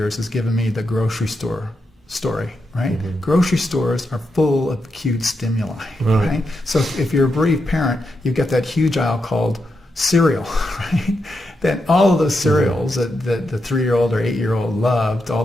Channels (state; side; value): normal; both; correlation 0.85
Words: has given me the grocery store story, right? Grocery stores are full of acute stimuli, right? So if you're a bereaved parent, you've got that huge aisle called cereal, right? then all of those cereals that the 3-year-old or 8-year-old loved, all